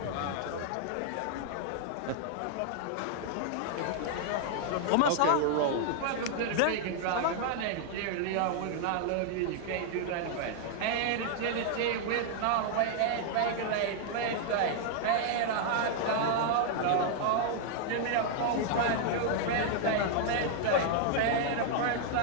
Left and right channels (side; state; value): both; different; correlation 0.00